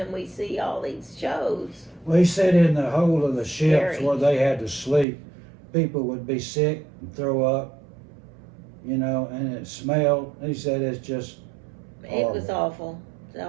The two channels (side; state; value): left; drops out; at 5.1 s